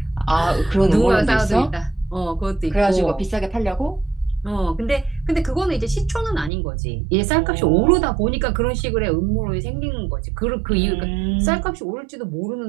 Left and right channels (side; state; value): left; drops out; at 6.5 s